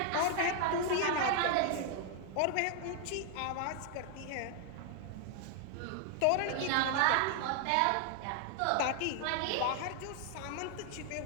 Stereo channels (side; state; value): both; different; correlation 0.00